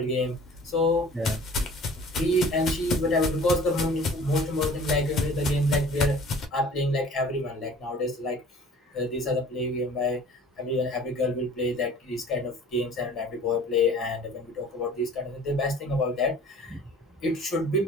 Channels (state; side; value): normal; both; correlation 0.47